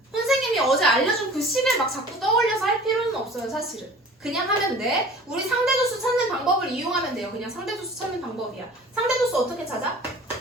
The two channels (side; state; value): both; normal; correlation 0.45